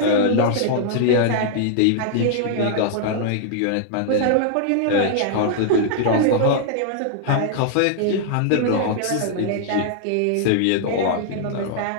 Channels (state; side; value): different; both; correlation -0.01